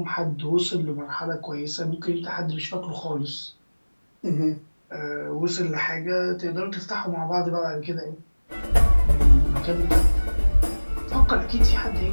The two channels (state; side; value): inverted; both; correlation -1.00